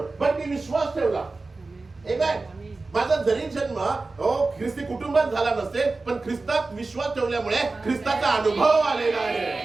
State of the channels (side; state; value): left; quieter; 3.6 dB